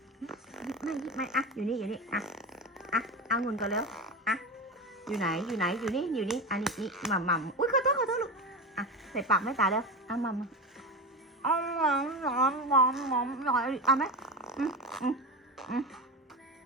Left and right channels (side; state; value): both; normal; correlation 0.22